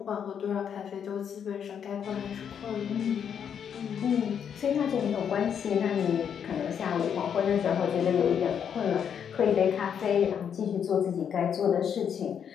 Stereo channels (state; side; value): quieter; right; 8.0 dB